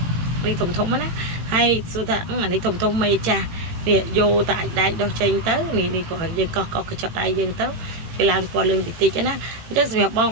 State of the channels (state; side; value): late; left; 18 ms